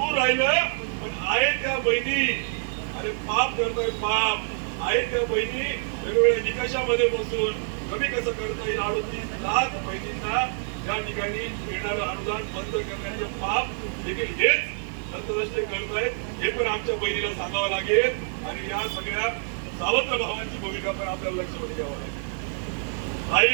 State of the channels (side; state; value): left; silent; 61 dB below the other